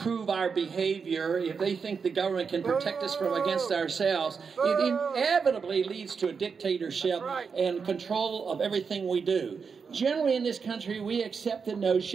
our behavior. If they think the government can protect us from against ourselves, it inevitably leads to a dictatorship and control of everything we do. Generally in this country, we accept the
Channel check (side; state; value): left; quieter; 5.7 dB